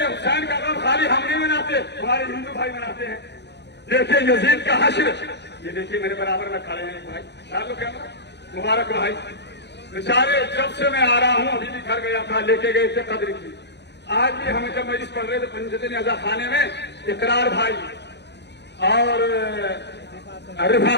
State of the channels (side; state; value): right; late; 0.50 ms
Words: حسین کا غم خالی ہم نہیں مناتے، ہمارے ہندو بھائی مناتے ہیں۔ دیکھیے یزید کا حشر، یہ دیکھیے میرے برابر میں کھڑے ہیں بھائی، مبارک بھائی، بیچارے جب سے میں آ رہا ہوں ابھی بھی گھر گیا تھا، لے کے گئے تھے قدر کی، آج بھی ہمیں جب مجلس پڑھ رہے تھے پنجتن اعضا خانے میں، اقرار بھائی اور